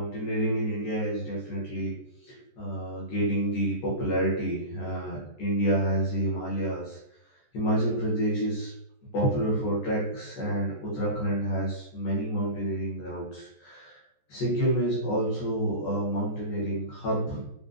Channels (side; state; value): right; late; 14 ms